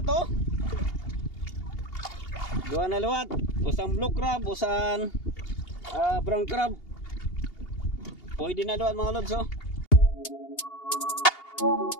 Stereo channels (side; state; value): right; late; 2.8 ms